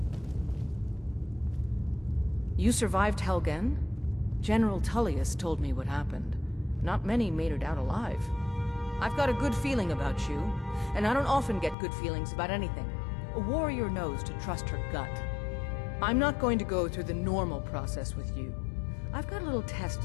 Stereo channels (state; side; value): drops out; right; at 11.8 s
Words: You survived Helgen? General Tullius told me what happened. Not many made it out alive. I've got a good feeling about you, and I don't often get good feelings about anything. A warrior knows to trust her gut. I'm not going to go through the normal process with you. I've got a little test